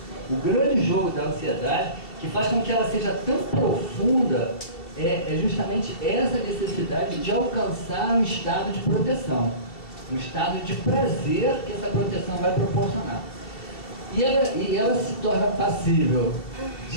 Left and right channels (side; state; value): right; late; 2.7 ms